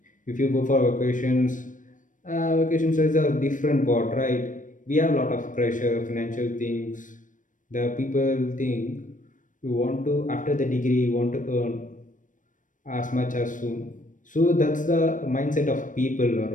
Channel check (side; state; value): right; late; 0.38 ms